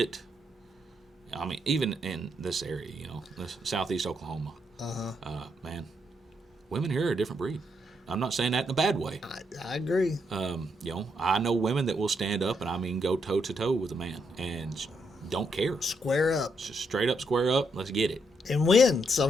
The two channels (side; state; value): both; normal; correlation 0.78